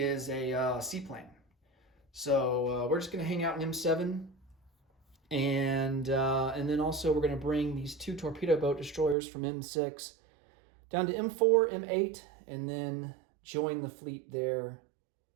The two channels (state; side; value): drops out; left; at 9.2 s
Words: a seaplane. So we're just going to hang out in M7, and then also we're going to bring these 2 torpedo boat destroyers from M6 down to M4, M8, and then join the fleet there